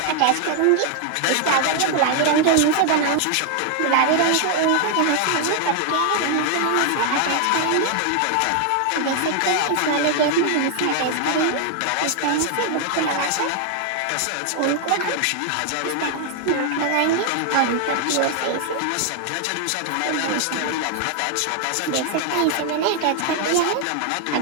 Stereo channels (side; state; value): both; different; correlation 0.00